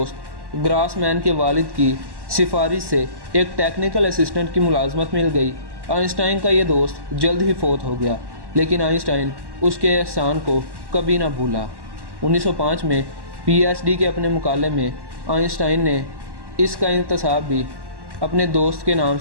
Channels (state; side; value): late; left; 1.1 ms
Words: ग्रासमैन के वालिद की सिफारिश से एक टेक्निकल असिस्टेंट की मुलाजमत मिल गई। आइंस्टाइन का ये दोस्त जल्द ही फौत हो गया, लेकिन आइंस्टाइन उसके एहसान को कभी ना भूला। 1905 में पीएचडी के अपने मुकाले में आइंस्टाइन ने इसका इंतसाब भी अपने दोस्त के नाम